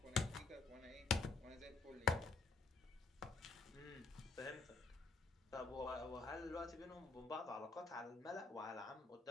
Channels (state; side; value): quieter; right; 4.1 dB